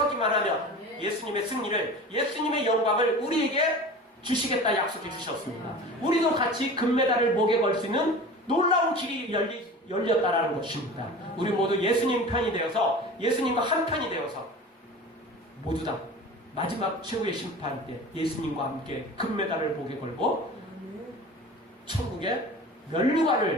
하면 예수님의 승리를 예수님의 영광을 우리에게 주시겠다 약속해 주셨습니다. 우리도 같이 금메달을 목에 걸 수 있는 놀라운 길이 열렸다라는 것입니다. 우리 모두 예수님 편이 되어서 예수님과 한 편이 되어서 모두 다 마지막 최후의 심판 때 예수님과 함께 금메달을 목에 걸고 천국의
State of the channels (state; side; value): normal; both; correlation 0.36